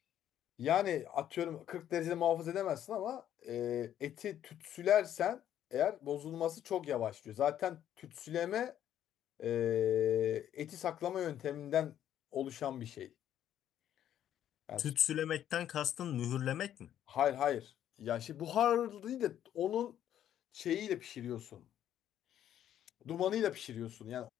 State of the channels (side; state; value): right; quieter; 10.8 dB